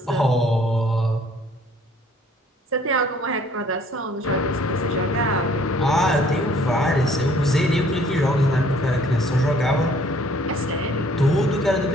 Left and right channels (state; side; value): normal; both; correlation 0.58